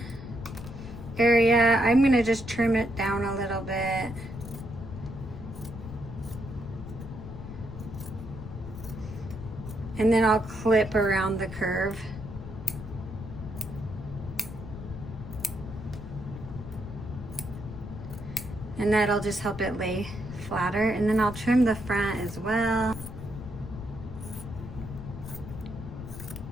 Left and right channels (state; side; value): noise; left; rumble, 10 dB below the sound